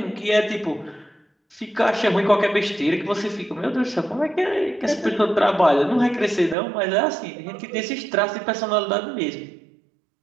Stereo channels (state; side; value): drops out; left; at 6.6 s